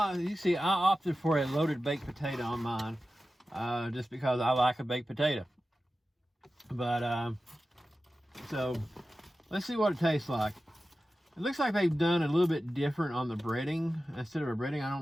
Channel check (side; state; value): both; normal; correlation 0.94